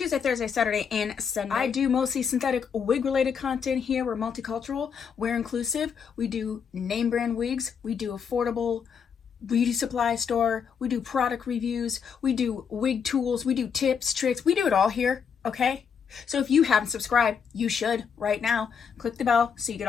Thursday, Saturday, and Sunday. I do mostly synthetic wig related content here. We're multicultural, we're inclusive. We do name brand wigs, we do affordable beauty supply store, we do product reviews, we do wig tools, we do tips, tricks, we do it all here, okay? So if you haven't subscribed, you should right now. Click the bell so you get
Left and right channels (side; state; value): right; quieter; 6.8 dB